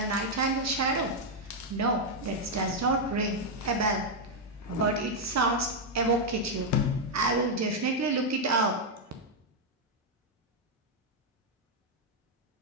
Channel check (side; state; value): both; normal; correlation 0.00